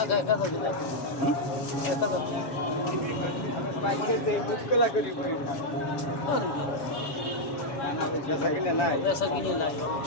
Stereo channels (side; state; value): right; late; 7.3 ms